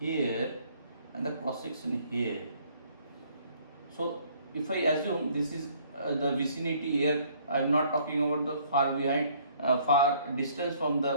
and the cross section here, so if I assume this is the vicinity here, I am not talking about the far distance from the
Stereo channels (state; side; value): inverted; both; correlation -0.61